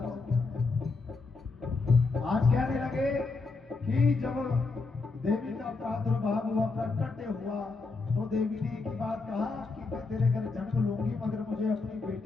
होता है। आज कहने लगे कि जब देवी का प्रादुर्भाव हुआ, प्रकट हुआ, तो देवी ने एक ही बात कहा कि मैं तेरे घर जन्म लूंगी मगर मुझे अपनी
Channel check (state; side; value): quieter; right; 3.9 dB